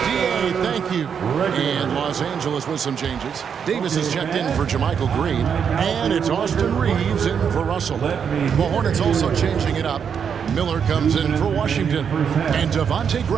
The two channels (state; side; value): quieter; left; 7.2 dB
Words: D.A. Thank you. And Los Angeles with some changes. Davis is checked in for Jermichael Green. And it's Austin Reeves in for Russell. The Hornets also changing it up. Miller comes in for Washington. And Devontae